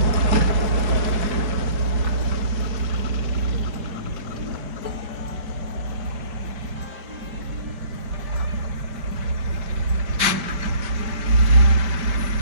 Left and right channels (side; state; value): left; late; 5.1 ms